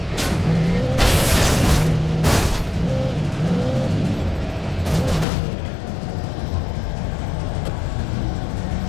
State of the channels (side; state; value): right; drops out; at 5.2 s